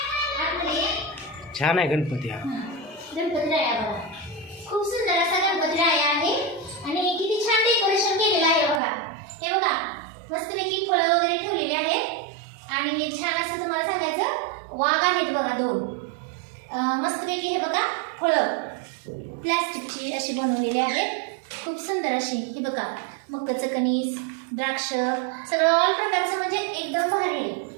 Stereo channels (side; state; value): left; drops out; at 8.8 s